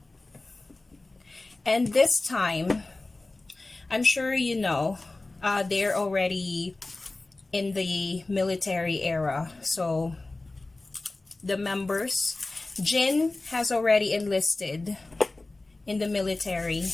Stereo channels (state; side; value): quieter; right; 3.1 dB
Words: And this time, I'm sure you know, they're already in the military era. So the members, Jin has already enlisted in the military